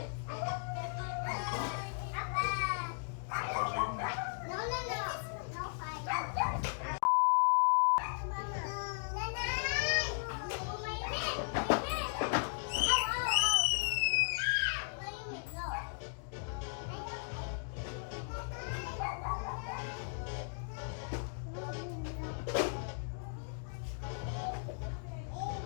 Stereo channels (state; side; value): silent; right; digital silence